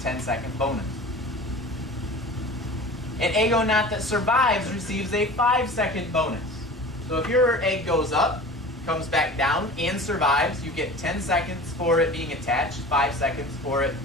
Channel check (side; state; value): both; normal; correlation 0.38